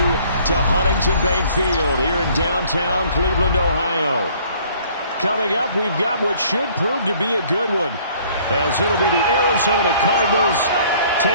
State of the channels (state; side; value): inverted; both; correlation -0.57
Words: to Huntington Bank Field here in downtown Cleveland, Ohio. Coming up, we've got what should prove to be a good one, as it'll be the Arizona Cardinals